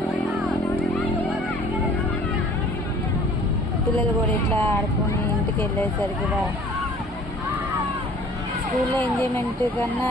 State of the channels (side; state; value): both; normal; correlation 0.51